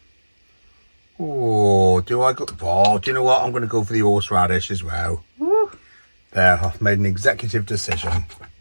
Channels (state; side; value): inverted; both; correlation -1.00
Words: oh, do I go? Oh, do you know what? I'm going to go for the horseradish as well. Woo. There, I've made an executive decision.